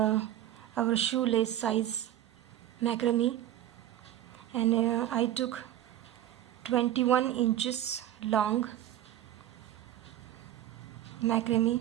shoelace size macrame, and I took 21 inches long macrame.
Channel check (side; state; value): left; quieter; 12.4 dB